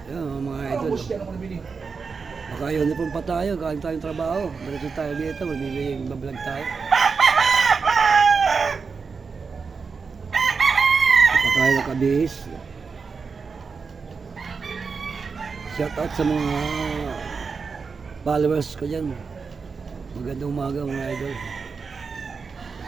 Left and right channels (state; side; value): quieter; left; 5.1 dB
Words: Yan mga Ano idol. bus yan ako nabili? Baka uniform pa tayo, galing tayong trabaho. Diretso tayo dito, magbibigay bablog tayo. Pa tayo nakabihis. Shout out sa mga followers ko dyan. Magandang umaga mga idol.